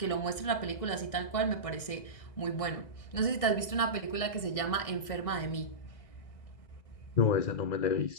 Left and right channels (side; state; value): right; late; 1.6 ms